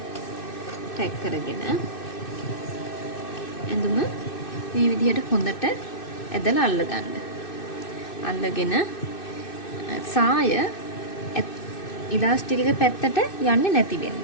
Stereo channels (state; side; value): late; right; 2.6 ms